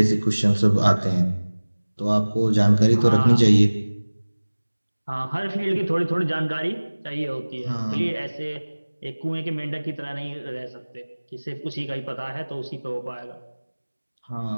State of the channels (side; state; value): both; inverted; correlation -1.00